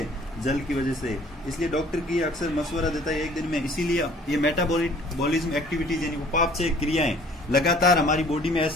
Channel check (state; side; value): normal; both; correlation 0.54